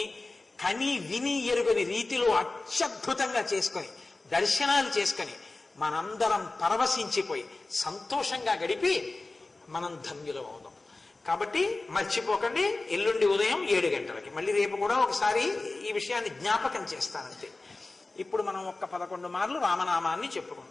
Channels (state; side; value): quieter; right; 3.2 dB